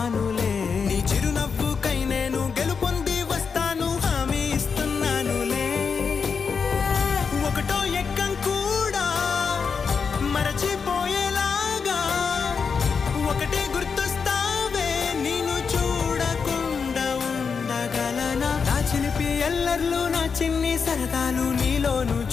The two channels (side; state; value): right; quieter; 5.7 dB